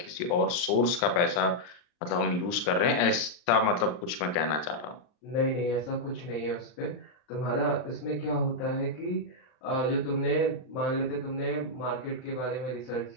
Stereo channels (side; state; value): right; late; 39 ms